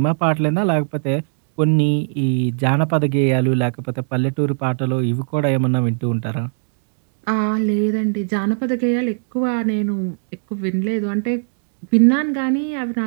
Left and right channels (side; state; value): left; silent; digital silence